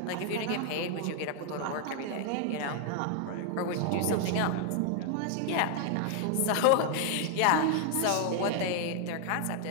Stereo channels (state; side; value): different; both; correlation 0.00